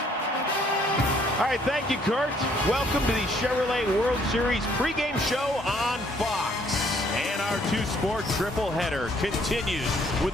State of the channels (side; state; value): both; normal; correlation 0.64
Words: All right, thank you, Kurt. Welcome to the Chevrolet World Series pregame show on Fox. And our two-sport triple-header continues with